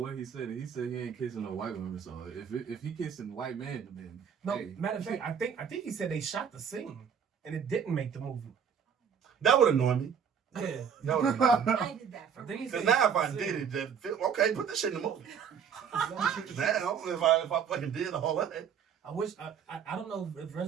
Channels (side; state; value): left; quieter; 7.5 dB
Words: he said. He said he ain't kissing no white woman. So if he kissing white man, then No, hey. matter of fact, I think he said they shot the scene and it didn't make the movie. That would annoy me. Yeah. That would annoy me. I did that for Because now if I did it, then okay, put this shit in the movie. Now if I fucking did all that. I wish I don't know if